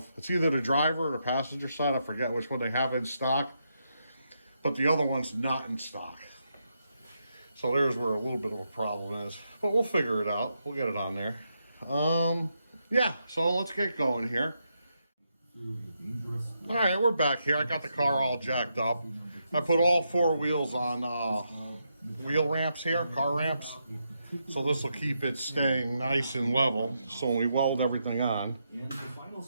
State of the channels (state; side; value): inverted; both; correlation -0.82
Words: it's either the driver or the passenger side. I forget which one they have in stock, but the other one's not in stock. So there's where a little bit of a problem is, but we'll figure it out. We'll get it on there. Yeah, so let's get going here. All right, we're back here. I got the car all jacked up. I put all four wheels on wheel ramps here, car ramps. So this will keep it staying nice and level. So when we weld everything on,